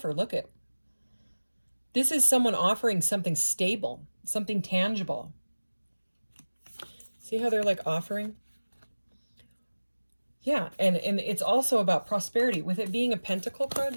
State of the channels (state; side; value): inverted; both; correlation -1.00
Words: Look at. This is someone offering something stable, something tangible. See how they're like offering? Yeah, and it's also about prosperity. With it being a pentacle card